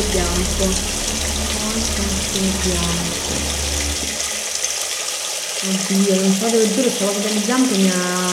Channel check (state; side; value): identical; both; correlation 1.00